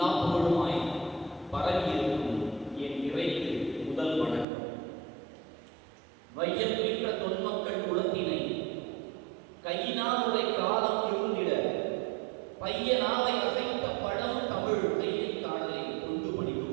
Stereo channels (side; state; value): left; drops out; at 4.5 s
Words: புகழுமாய் பரவியிருக்கும் என் இறைக்கு முதல் வணக்கம். வையம் நின்ற தொன்மக்கள் குலத்தினை கையினால் உரை காலம் இருந்திட பையனாவை அசைத்த பழம் தமிழ் கையை காடலை கொண்டு